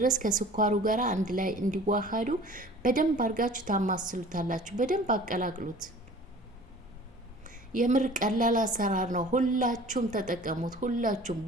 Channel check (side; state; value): both; normal; correlation 0.46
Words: ከስኳሩ ጋር አንድ ላይ እንዲዋሃዱ በደንብ አድርጋችሁ ታማስሉታላችሁ። በደንብ አቀላቅሉት። የምር ቀላል አሰራር ነው። ሁላችሁም ተጠቀሙት። ሁላችሁም